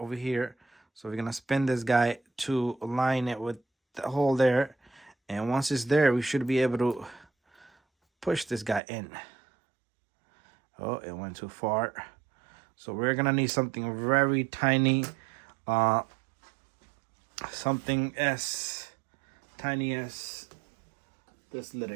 here. So we're gonna spin this guy to align it with the hole there, and once it's there, we should be able to push this guy in. Oh, it went too far. So we're gonna need something very tiny, something as tiny as this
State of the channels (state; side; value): drops out; left; at 8.8 s